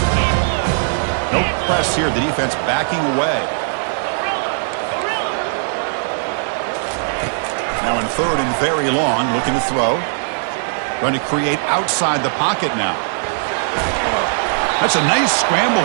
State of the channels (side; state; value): left; silent; digital silence